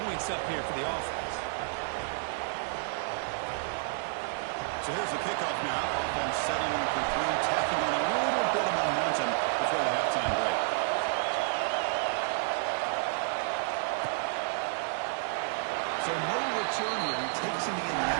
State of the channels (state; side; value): silent; left; 57 dB below the other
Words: points up here for the offense. So here's the kickoff now. Offense settling in for 3, tacking on a little bit of momentum before the halftime break. So no return here. He takes him in the